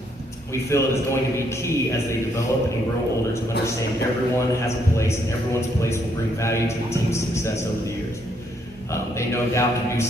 We feel it is going to be key as they develop and grow older to understand everyone has a place and everyone's place will bring value to the team's success over the years. They no doubt can do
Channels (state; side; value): normal; both; correlation 0.72